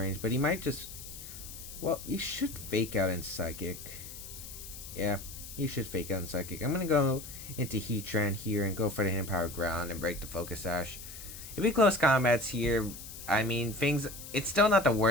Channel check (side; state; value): left; noise; hiss, 12 dB below the sound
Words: but he might just... Well, you should Fake Out in Psychic. Yeah, you should Fake Out in Psychic. I'm gonna go into Heatran here and go for the Hidden Power Ground and break the Focus Sash. If we Close Combats here, I mean, it's still not the